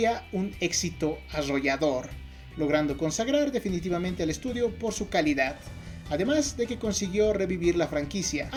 un éxito arrollador, logrando consagrar definitivamente al estudio por su calidad, además de que consiguió revivir la franquicia,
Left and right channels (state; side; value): identical; both; correlation 1.00